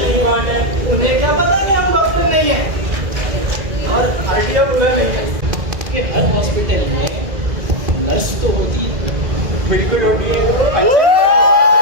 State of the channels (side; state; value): left; late; 2.0 ms